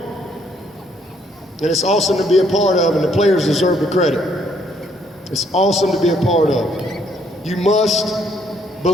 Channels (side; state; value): both; normal; correlation 0.68